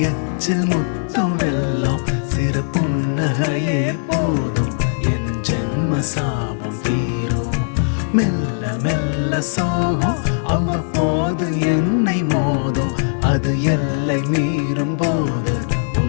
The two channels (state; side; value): silent; right; digital silence